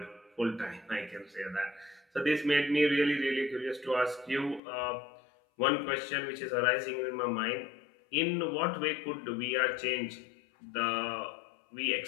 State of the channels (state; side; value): drops out; right; at 4.6 s